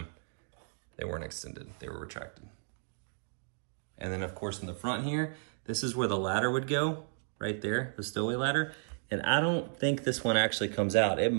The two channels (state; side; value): silent; left; digital silence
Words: they weren't extended, they were retracted. And then of course in the front here, this is where the ladder would go, right there, the stowaway ladder. And I don't think this one actually comes out. It